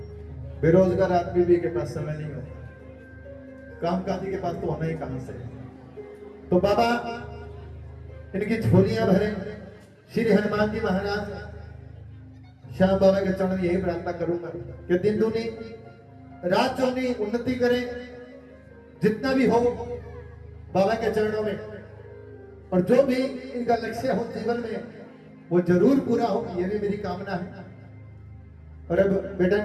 बेरोजगार आदमी भी के पास समय नहीं होता, कामकाजी के पास तो होना ही कहां से। तो बाबा इनकी झोलियां भरे, श्री हनुमान जी महाराज श्याम बाबा के चरण में यही प्रार्थना करूंगा कि दिन दूनी रात चौनी उन्नति करें, जितना भी हो बाबा के चरणों में, और जो भी इनका लक्ष्य हो जीवन में वो जरूर पूरा हो, ये भी मेरी कामना है। और अब बेटा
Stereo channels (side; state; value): both; identical; correlation 1.00